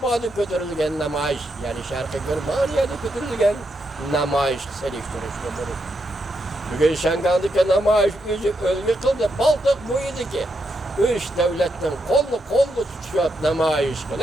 götürülgen namayış, yani Şarkı Germanya'da götürülgen namayış seliştirişti bunu. Bugün Şangal'daki namayış yüzü ölgü kıldı, Baltık buydu ki 3 devletten kollu tutuşup namayış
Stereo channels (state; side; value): normal; both; correlation 0.81